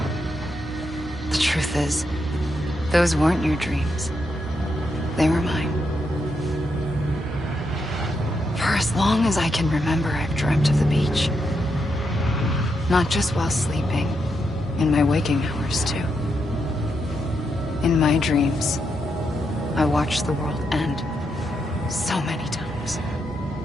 The truth is, those weren't your dreams. They were mine. For as long as I can remember, I've dreamt of the beach. Not just while sleeping, in my waking hours too. In my dreams, I watched the world end so many times.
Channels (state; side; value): normal; both; correlation 0.82